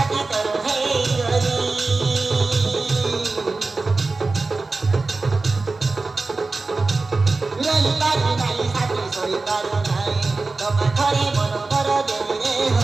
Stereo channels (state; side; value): quieter; left; 3.6 dB